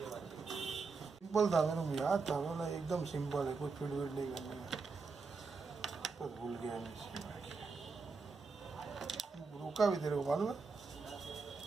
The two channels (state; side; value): quieter; left; 4.5 dB